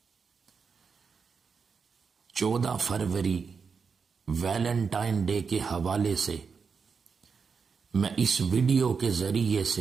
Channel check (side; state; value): left; quieter; 5.6 dB